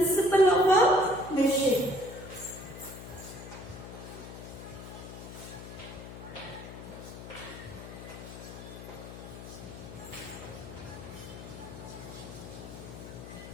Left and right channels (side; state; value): left; noise; hum, 12 dB below the sound